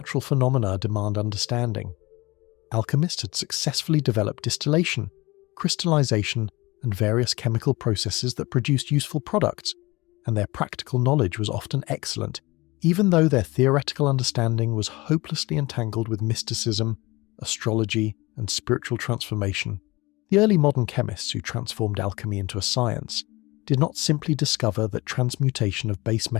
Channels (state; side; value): quieter; right; 22.2 dB